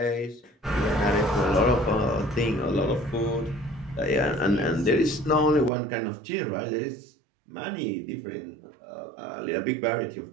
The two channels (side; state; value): left; drops out; at 5.7 s